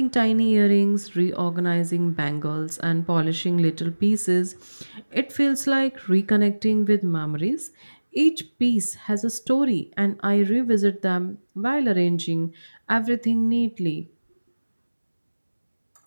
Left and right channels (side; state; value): both; inverted; correlation -1.00